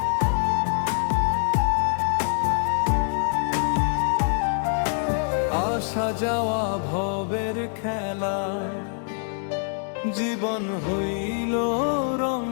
আসা যাওয়া ভবের খেলা। জীবন হইল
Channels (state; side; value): silent; right; digital silence